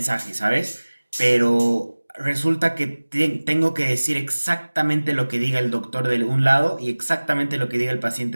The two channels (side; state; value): both; inverted; correlation -1.00